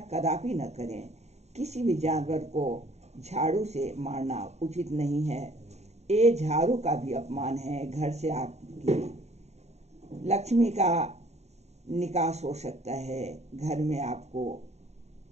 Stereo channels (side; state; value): left; late; 0.32 ms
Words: कदापि न करें, किसी भी जानवर को झाड़ू से मारना उचित नहीं है। ये झाड़ू का भी अपमान है। घर से आपकी लक्ष्मी का निकास हो सकता है, घर में आपको